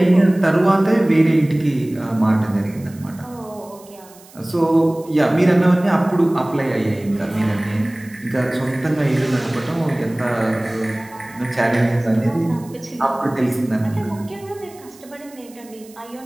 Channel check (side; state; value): right; noise; hiss, 24 dB below the sound